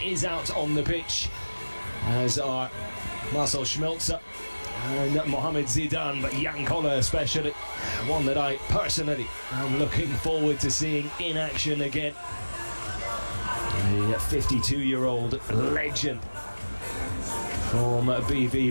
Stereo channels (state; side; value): inverted; both; correlation -1.00